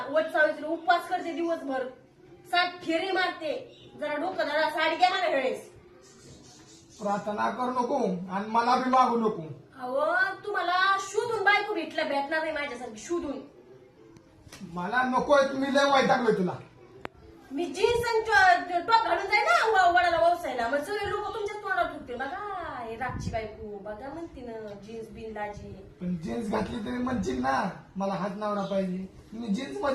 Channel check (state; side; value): identical; both; correlation 1.00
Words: वट सावित्री उपवास करते दिवसभर. 7 फेरी मारते. जरा डोकं धरा. साडी घ्या मला वेळेस. प्रार्थना करू नको आणि मला बी मागू नको. अहो तुम्हाला शोधून बायको भेटणार नाही माझ्यासारखी शोधून. मला नकोय, तुम्ही लय वैतागलोय तुला. मी जीन्स आणि टॉप घालून जाईल ना वडाला ववसायला. मग सगळे लोक तुमच्याच तोंडावर ठुकते. बघा हे रागची बायको बघा म्हणते ना जीन्स बिन लाजी. पण जीन्स घातली तरी म्हणशील ना मला हात नवरा पाहिजे. मी जीन्स